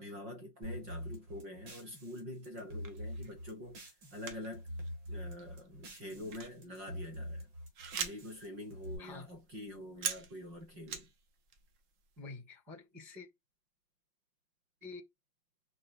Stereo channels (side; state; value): left; late; 5.6 ms